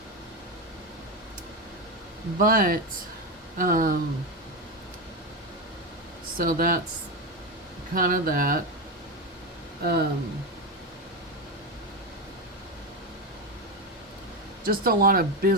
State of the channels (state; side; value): normal; both; correlation 0.13